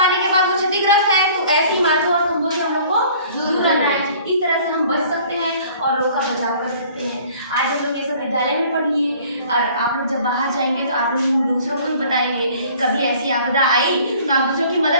के बाद वो क्षतिग्रस्त है, तो ऐसी इमारतों और खंभों से हम लोग को दूर रहना है। इस तरह से हम बच सकते हैं और लोग का बचाव कर सकते हैं। आज हम लोग ये सब विद्यालय में पढ़ लिए और आप लोग जब बाहर जाएंगे तो आप लोग दूसरों को भी बताएंगे, कभी ऐसी आपदा आई तो आप दूसरों की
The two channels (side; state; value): both; inverted; correlation -0.52